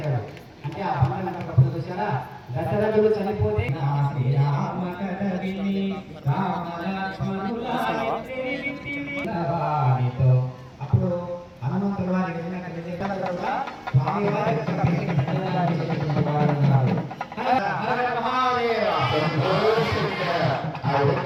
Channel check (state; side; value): identical; both; correlation 1.00